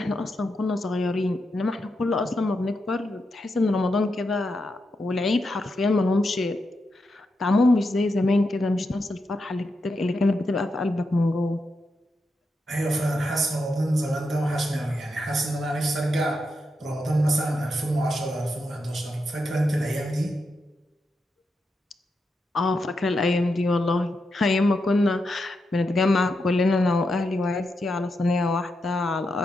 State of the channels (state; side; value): normal; both; correlation 0.85